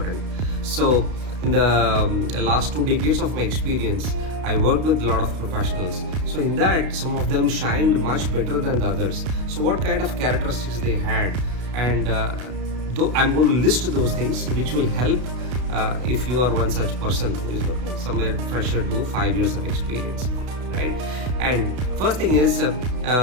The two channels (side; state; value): left; late; 32 ms